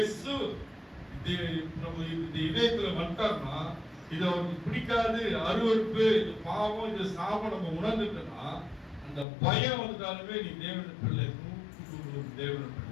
நம்ம இந்த இதயத்துல வந்துட்டார்னா இது அவருக்கு பிடிக்காது, அருவருப்பு, இது பாவம், இது சாபம் நம்ம உணர்ந்துட்டோம்னா அந்த பயம் வந்துட்டாலுமே நீ தேவன பிள்ளை, தேவன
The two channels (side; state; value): right; drops out; at 9.2 s